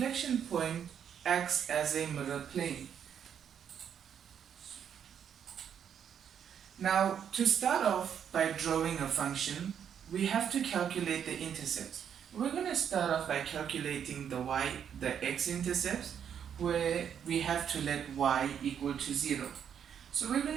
point acts as a mirror plane. Now, to start off by drawing a function, we have to calculate the intercepts. We're going to start off by calculating the x-intercepts, where we have to let y equal to 0. So we're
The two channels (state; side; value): quieter; left; 8.4 dB